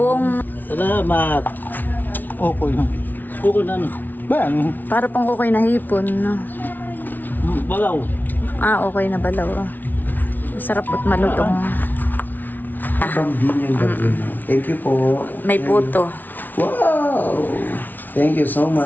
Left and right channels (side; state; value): right; late; 0.085 ms